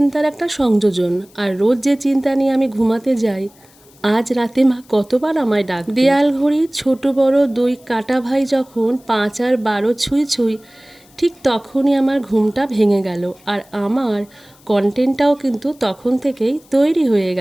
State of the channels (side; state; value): left; noise; hiss, 28 dB below the sound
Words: একটা সংযোজন। আর রোজ যে চিন্তা নিয়ে আমি ঘুমাতে যাই, আজ রাতে মা কতবার আমায় ডাক। দেয়াল ঘড়ি ছোট বড় দুই কাটা ভাই যখন 5 আর 12 ছুঁই ছুঁই, ঠিক তখনই আমার ঘুমটা ভেঙে গেল। আর আমার কন্টেন্টটাও কিন্তু তখন থেকেই তৈরি হয়ে